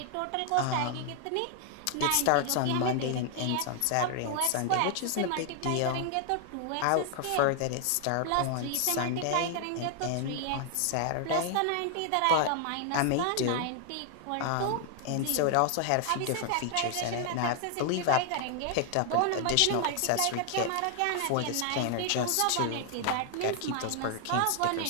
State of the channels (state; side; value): different; both; correlation 0.00